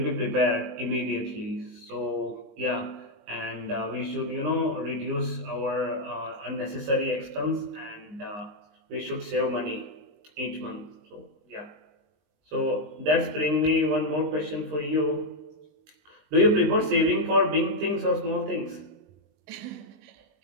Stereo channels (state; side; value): late; left; 20 ms